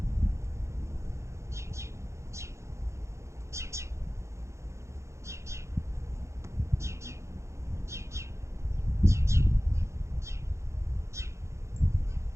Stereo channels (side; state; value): left; late; 0.14 ms